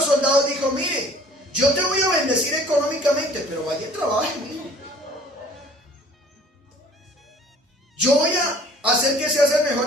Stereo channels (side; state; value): both; normal; correlation 0.52